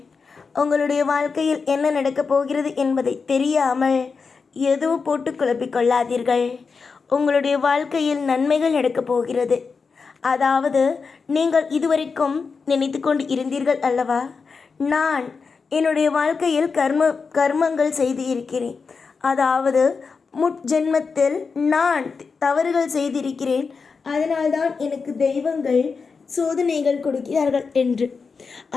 உங்களுடைய வாழ்க்கையில் என்ன நடக்கப் போகிறது என்பதை தெரியாமல் எதுவும் போட்டு குழப்பிக்கொள்ளாதீர்கள். உங்களுடைய வாழ்க்கையில் நன்மைகள் நடக்கப் போகிறது. அதாவது நீங்கள் இதுவரைக்கும் நினைத்து கொண்டு இருந்தீர்கள் அல்லவா, நான் என்னுடைய வாழ்க்கையில் கர்மங்கள் செய்து இருக்கிறேன். அதாவது முற்ஜென்மத்தில் நான் தவறுகள் செய்திருக்கிறேன், அதனால்தான் எனக்கு தெய்வங்கள் சோதனைகள் கொடுக்கிறார்கள் என்று.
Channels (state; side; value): quieter; right; 5.0 dB